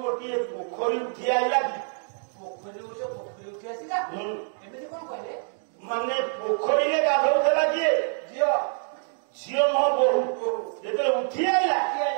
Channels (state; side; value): silent; left; 61 dB below the other